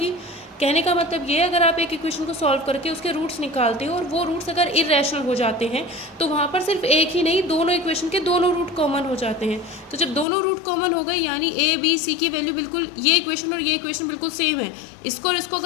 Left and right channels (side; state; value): right; drops out; at 10.2 s